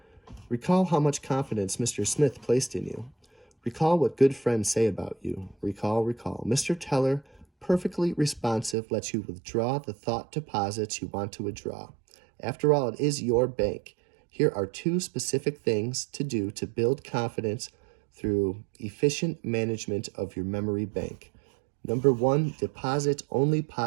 Recall how much confidence Mr. Smith placed in you. Recall what good friends say about you. Recall. Mr. Teller, perfectly responsive, lets you withdraw the thought deposits you want to withdraw. After all, it is your bank. Here are 2 specific things to do to build confidence through efficient management of your memory bank. Number 1, deposit only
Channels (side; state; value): left; drops out; at 8.8 s